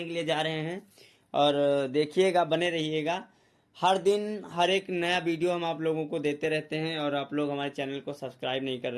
के लिए जा रहे हैं और देखिएगा, बने रहिएगा। हर दिन हर एक नया वीडियो हम आप लोगों को देते रहते हैं और आप लोग हमारे चैनल को सब्सक्राइब नहीं कर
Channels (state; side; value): identical; both; correlation 1.00